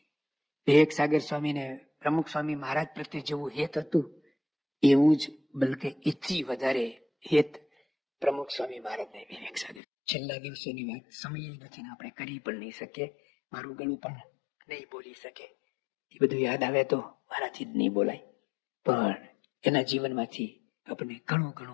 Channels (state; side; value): drops out; right; at 9.8 s